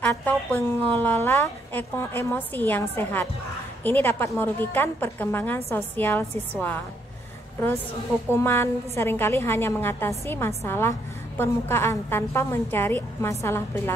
pengelola emosi yang sehat. Ini dapat merugikan perkembangan sosial siswa. Terus hukuman seringkali hanya mengatasi masalah permukaan tanpa mencari masalah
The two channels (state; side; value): normal; both; correlation 0.73